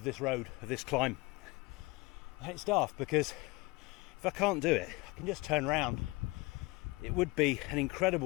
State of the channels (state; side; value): quieter; right; 23.9 dB